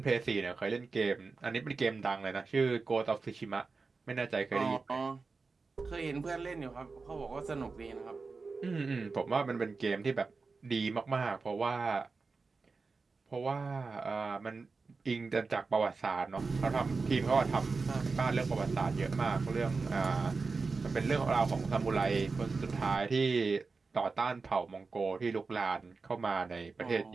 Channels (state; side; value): quieter; left; 4.3 dB